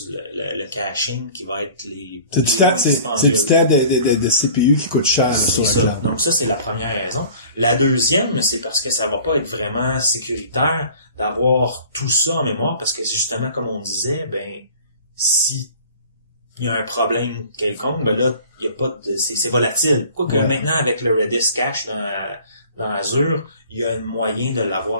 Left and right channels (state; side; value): inverted; both; correlation -0.46